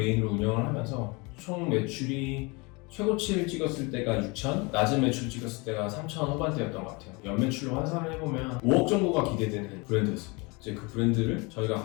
운영을 하면서 총 매출이 최고치를 찍었을 때가 6천, 낮은 매출 찍었을 때가 3천 후반대였던 것 같아요. 연매출로 환산을 해보면 5억 정도가 기대되는 브랜드였습니다. 이제 그 브랜드를 저희가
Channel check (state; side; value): quieter; right; 27.7 dB